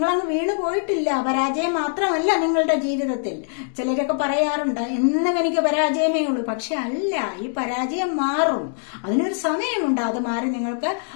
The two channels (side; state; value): right; silent; digital silence